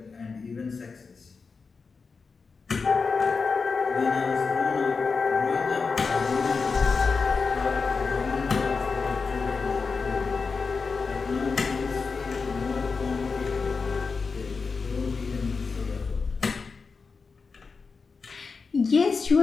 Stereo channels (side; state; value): right; quieter; 4.8 dB